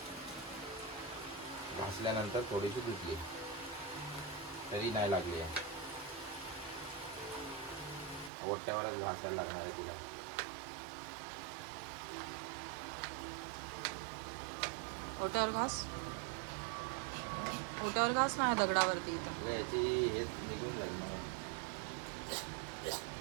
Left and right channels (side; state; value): left; drops out; at 8.3 s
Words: घासल्यानंतर थोडीशी धुतली तरी नाही लागली आहे, ओट्यावरच घासायला लागणार आहे तिला. ओट्यावर घास नाही दगडावरती इथं. याची हे निघून जाईल म्हणून.